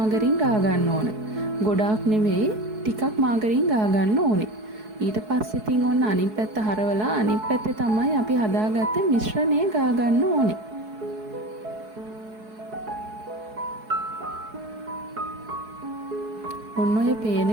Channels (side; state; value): left; late; 4.7 ms